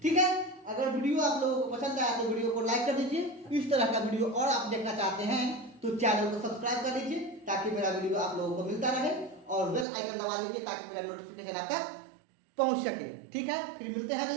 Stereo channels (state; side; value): drops out; left; at 9.9 s